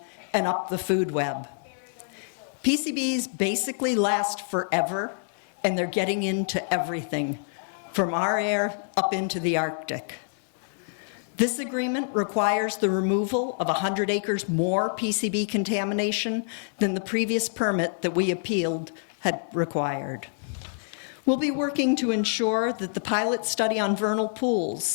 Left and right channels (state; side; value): silent; right; digital silence